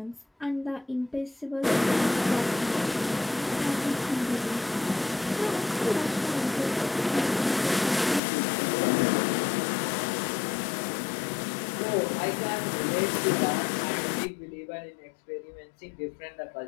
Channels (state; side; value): drops out; right; at 8.2 s